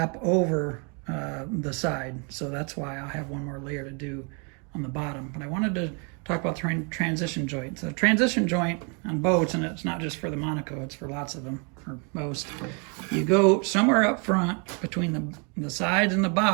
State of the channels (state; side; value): quieter; left; 35.6 dB